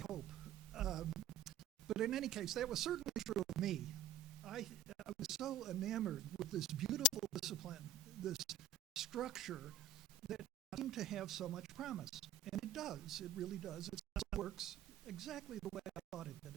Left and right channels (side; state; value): left; quieter; 5.5 dB